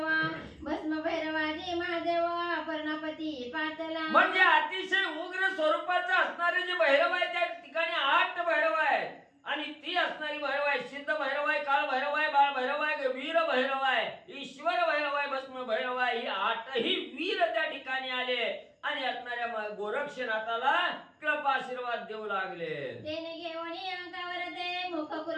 भस्म भैरवादी महादेव पर्णपती पातला. म्हणजे अतिशय उग्र स्वरूपाचं असणारे जे भैरव आहे त्या ठिकाणी 8 भैरव आहेत, आणि ती असणारी भैरव आहे सिद्ध भैरव आहे, काळ भैरव आहे, बाळ भैरव आहे, वीर भैरव आहे, ईश्वर भैरव आहे, भस्म भैरव आहे, ही 8ही वीर त्या ठिकाणी आले, आणि आणि असणाऱ्या गोरक्षनाथाला कृपा आशीर्वाद देऊ लागले. तेने घेऊन अंकावर ते मुख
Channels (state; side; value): identical; both; correlation 1.00